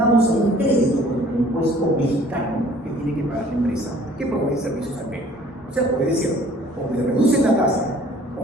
un crédito con el impuesto mexicano que tiene que pagar la empresa que provee servicios al Perú. O sea, puede decir, o me reducen la tasa,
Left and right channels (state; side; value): normal; both; correlation 0.53